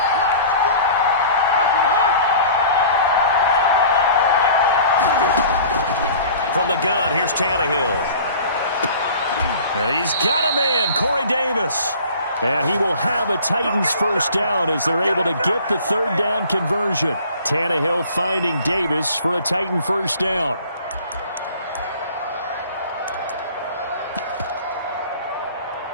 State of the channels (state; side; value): inverted; both; correlation -0.46